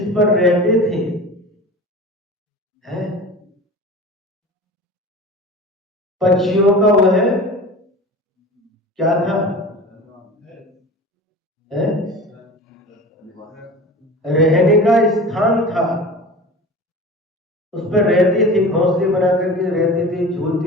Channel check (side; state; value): both; normal; correlation 0.35